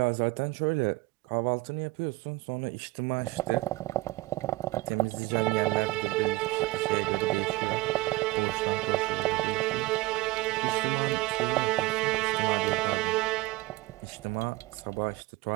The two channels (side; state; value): left; quieter; 20.5 dB